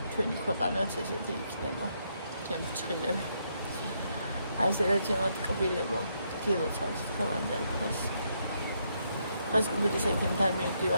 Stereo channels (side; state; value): both; inverted; correlation -0.76